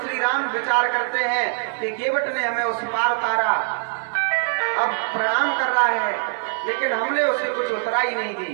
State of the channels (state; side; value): silent; left; digital silence